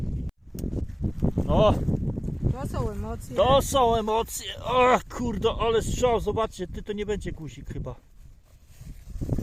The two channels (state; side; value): identical; both; correlation 1.00